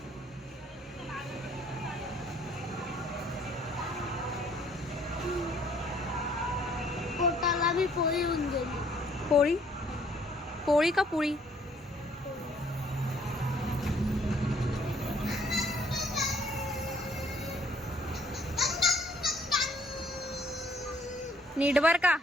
पोटाला बी पोळी होऊन गेली. पोळी पोळी का पोळी. नीट बर का.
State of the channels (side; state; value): both; normal; correlation 0.63